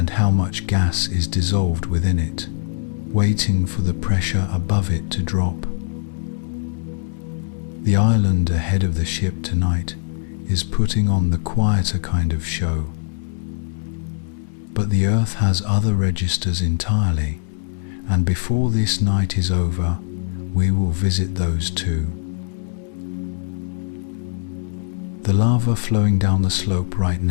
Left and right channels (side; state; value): right; silent; 65 dB below the other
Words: how much gas is dissolved within it, waiting for the pressure above it to drop. The island ahead of the ship tonight is putting on the quieter kind of show. But the Earth has other registers entirely, and before this night is over, we will visit those too. The lava flowing down the slope right